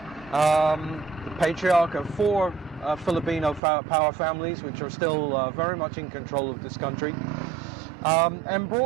The patriarch of 4 Filipino power families, which are still very much in control of this country, and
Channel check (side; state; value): left; drops out; at 3.6 s